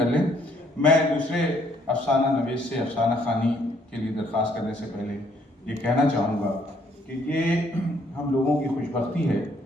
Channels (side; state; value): both; normal; correlation 0.66